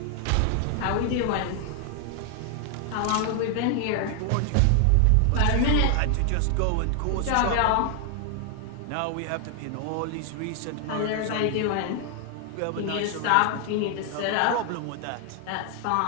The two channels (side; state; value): both; different; correlation 0.00